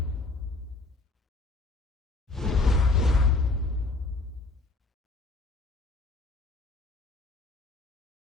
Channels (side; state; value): right; quieter; 3.2 dB